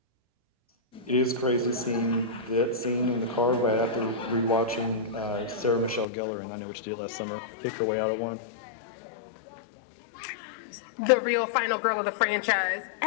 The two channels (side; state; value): right; drops out; at 6.1 s